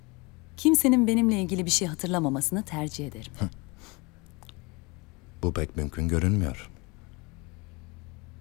Kimsenin benimle ilgili bir şey hatırlamamasını tercih ederim. Bu pek mümkün görünmüyor.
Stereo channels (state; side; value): quieter; right; 26.7 dB